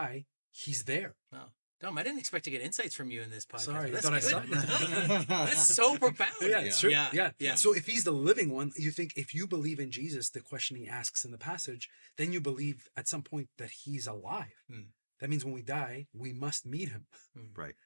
he's there. Wow. Dom, I didn't expect to get insights from you in this podcast. Sorry, I That's thought I good. saw That's so profound. Yeah, it's true. Yeah. Yeah. So if he's the living one, you think if you believe in Jesus, the question he asks in the passage, then you believe at some point that he's alive. That means when we die, we must meet him. Right.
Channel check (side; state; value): both; inverted; correlation -1.00